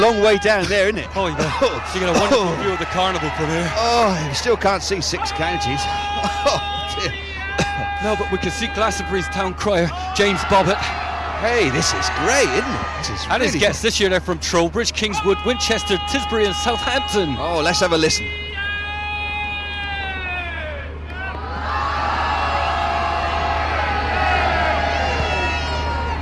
way down there, isn't it? Oh, yeah. You get a wonderful view of the carnival from here. Oh, you still can't see 6 counties. Oh, dear. No, but we can see Glastonbury's town crier, James Bobbitt. Hey, this is great, isn't it? This is And his really guests this year, they're from Trowbridge, Kingswood, Winchester, Tisbury and Southampton. Oh, let's have a listen.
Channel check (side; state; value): both; identical; correlation 1.00